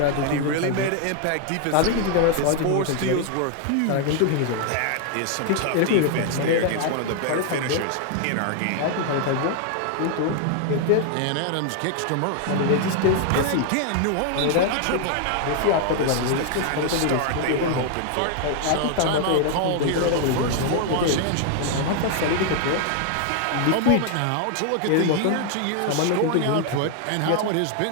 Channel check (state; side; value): different; both; correlation 0.00